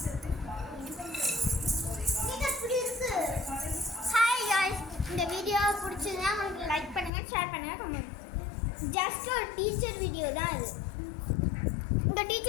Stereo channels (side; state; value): right; drops out; at 7.1 s